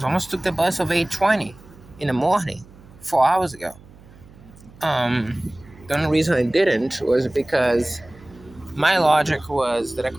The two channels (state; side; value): noise; right; hum, 23 dB below the sound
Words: almost took the bus of 8:20 in the morning, 4 hours ago. The only reason I didn't was because my logic was that I